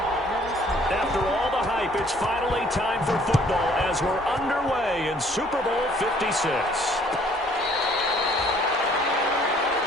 After all the hype, it's finally time for football as we're underway in Super Bowl 56.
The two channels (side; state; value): both; normal; correlation 0.59